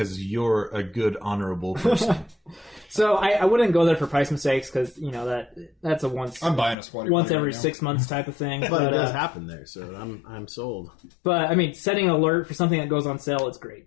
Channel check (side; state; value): right; drops out; at 6.8 s